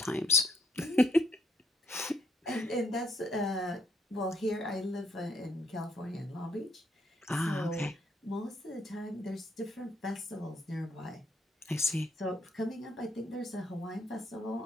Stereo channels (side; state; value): both; normal; correlation 0.71